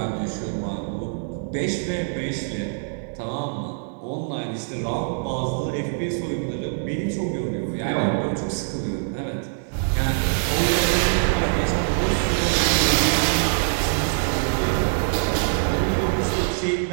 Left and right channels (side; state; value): left; silent; digital silence